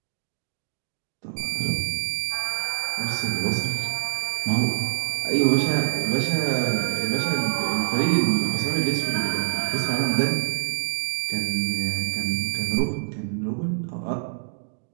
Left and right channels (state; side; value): silent; left; digital silence